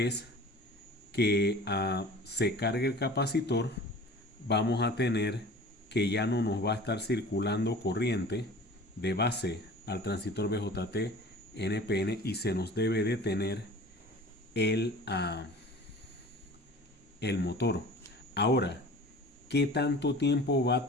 que se cargue el capacitor, vamos a tener que ya no nos va a estar circulando corriente de base al transistor BJT NPN y se nos debe detener el, el motor. Ahora, ¿qué tanto tiempo va a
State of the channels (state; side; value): normal; both; correlation 0.42